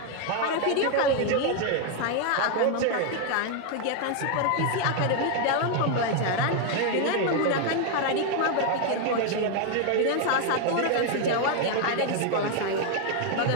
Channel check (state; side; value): different; both; correlation 0.00